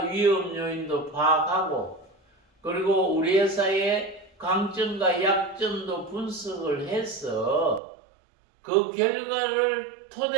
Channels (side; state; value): left; drops out; at 7.8 s